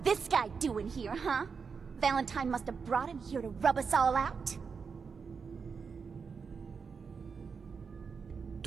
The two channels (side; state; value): left; quieter; 5.6 dB